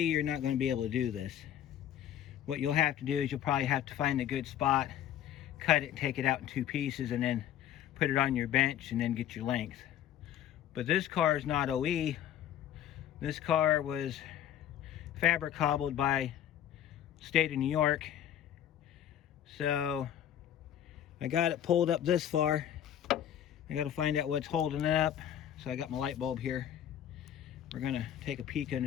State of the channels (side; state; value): right; quieter; 10.6 dB